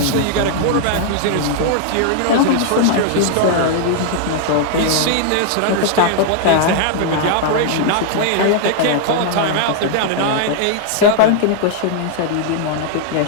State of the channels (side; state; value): both; different; correlation -0.01